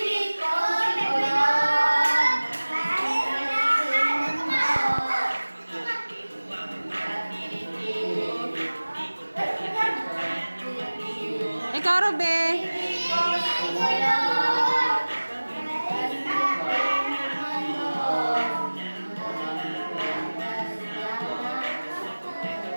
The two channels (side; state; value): both; inverted; correlation -1.00